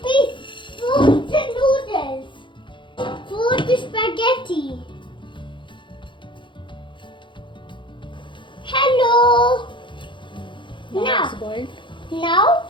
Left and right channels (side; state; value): right; late; 0.23 ms